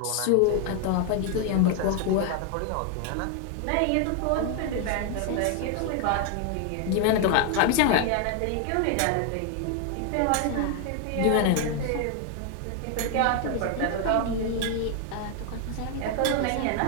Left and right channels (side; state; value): both; different; correlation 0.01